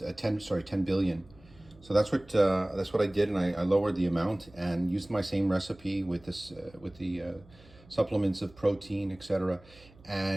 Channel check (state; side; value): noise; right; hum, 25 dB below the sound